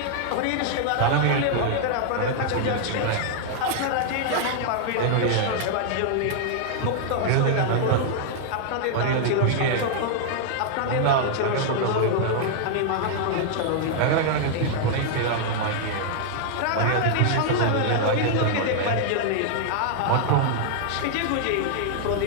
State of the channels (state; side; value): different; both; correlation -0.01